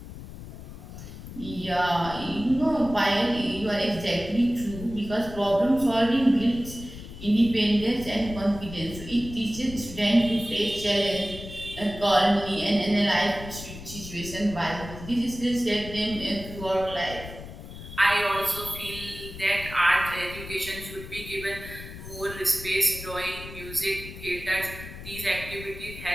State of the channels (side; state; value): left; noise; rumble, 12 dB below the sound